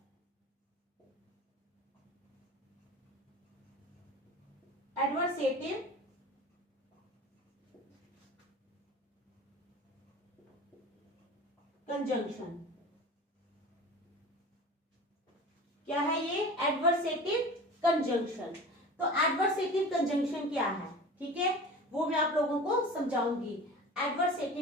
Adversative conjunction. क्या है ये? Adversative conjunction. तो एडवर्सेटिव कंजंक्शन क्या है, ठीक है, वो मैं आप लोगों को समझाऊंगी।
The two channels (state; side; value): normal; both; correlation 0.36